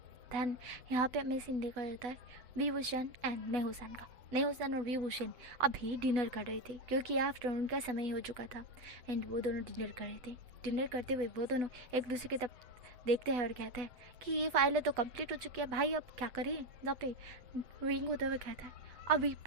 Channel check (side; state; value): left; late; 8.2 ms